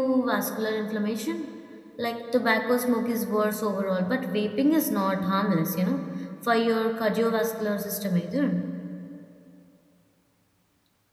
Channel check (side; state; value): both; identical; correlation 1.00